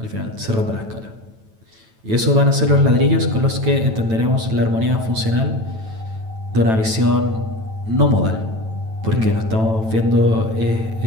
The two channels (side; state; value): left; late; 9.1 ms